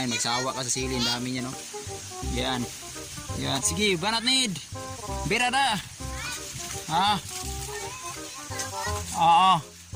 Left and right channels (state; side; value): identical; both; correlation 1.00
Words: magsawa ka sa sili, ang dami niya no. Yan. Yan, sige, banat need. Birada. Ha? Oo.